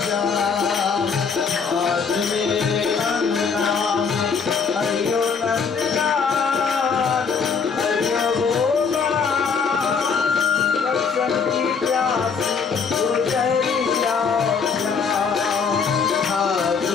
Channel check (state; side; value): quieter; right; 5.7 dB